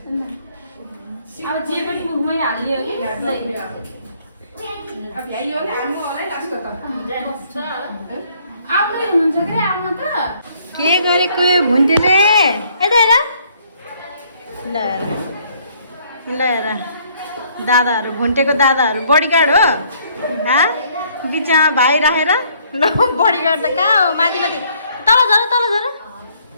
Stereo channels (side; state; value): both; inverted; correlation -0.64